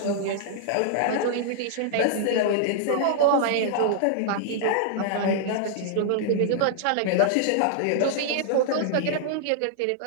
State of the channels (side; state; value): both; different; correlation -0.01